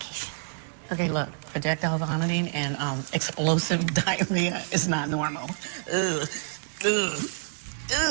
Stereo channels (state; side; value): silent; left; 60 dB below the other